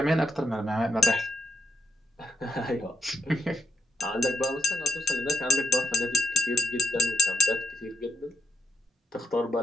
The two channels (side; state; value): both; normal; correlation 0.82